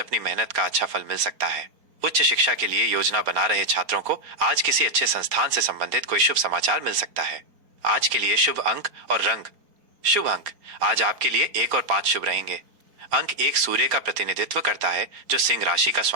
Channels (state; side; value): late; left; 4.3 ms